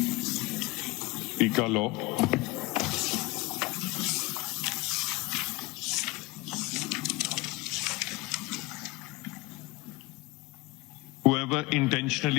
PICA law. Whoever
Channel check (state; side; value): quieter; right; 23.1 dB